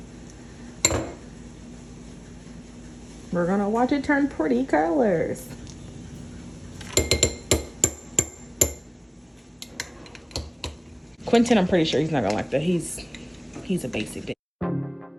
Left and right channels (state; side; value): identical; both; correlation 1.00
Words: We're gonna watch it turn pretty colors. Quentin, I'm pretty sure he's not gonna like that. He's a basic bitch.